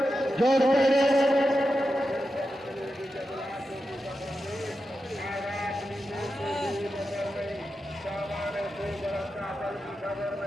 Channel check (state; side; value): normal; both; correlation 0.90